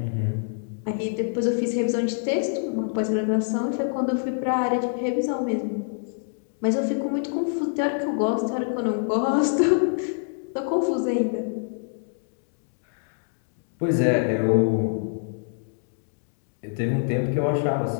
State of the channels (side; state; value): right; silent; digital silence